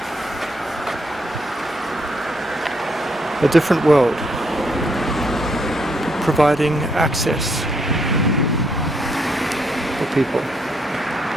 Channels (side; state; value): both; normal; correlation 0.74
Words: A different world, providing access for people.